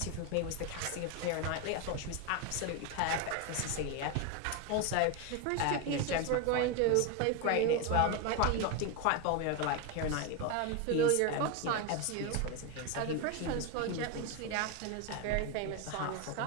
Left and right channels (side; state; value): both; different; correlation 0.02